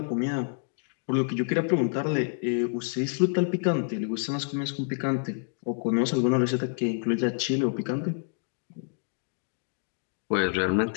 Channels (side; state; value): right; silent; 55 dB below the other